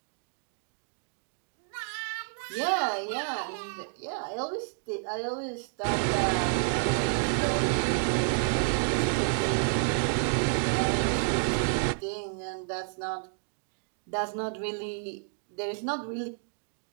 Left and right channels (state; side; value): silent; left; digital silence